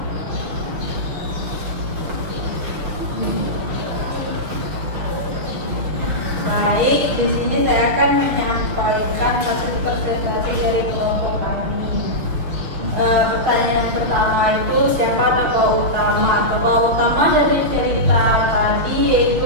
Baik, di sini saya akan menyampaikan hasil presentasi dari kelompok kami. Pertanyaan yang pertama itu siapa tokoh utama? Tokoh utama dari cerita tadi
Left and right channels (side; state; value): left; late; 6.4 ms